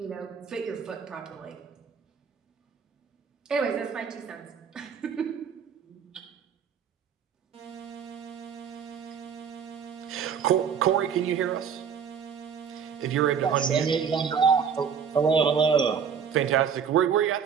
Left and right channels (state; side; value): quieter; left; 7.1 dB